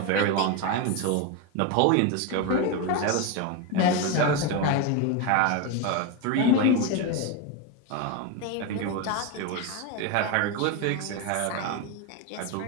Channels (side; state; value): both; different; correlation 0.03